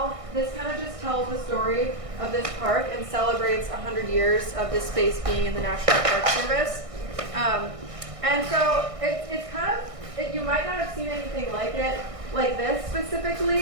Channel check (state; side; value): late; left; 1.6 ms